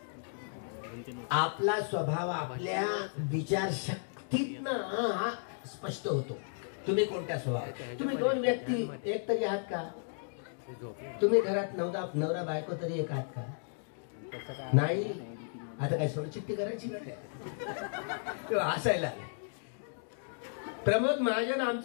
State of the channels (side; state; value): right; silent; digital silence